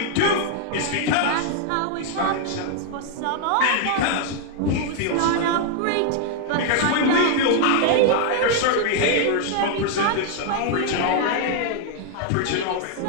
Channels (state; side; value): different; both; correlation 0.00